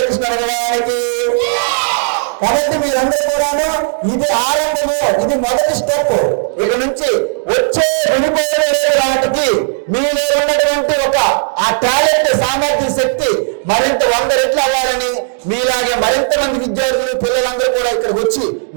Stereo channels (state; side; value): silent; left; digital silence